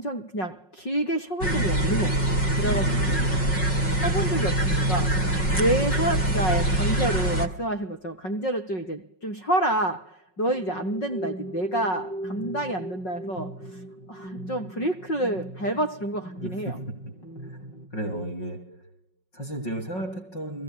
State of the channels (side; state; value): right; late; 5.4 ms